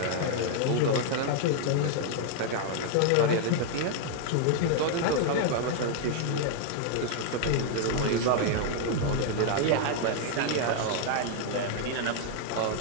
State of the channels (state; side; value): different; both; correlation 0.00